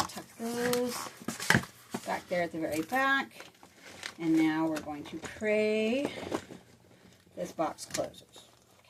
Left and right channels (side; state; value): both; identical; correlation 1.00